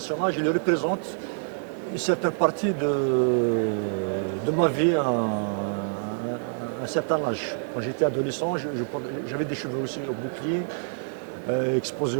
il représente une certaine partie de ma vie à un certain âge. Quand j'étais adolescent, j'avais des cheveux aussi au bouclier, exposés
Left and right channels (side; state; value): left; silent; 57 dB below the other